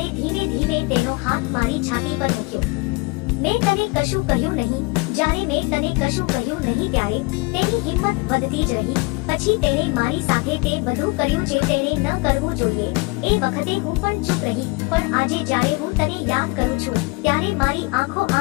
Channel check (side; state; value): right; quieter; 27.0 dB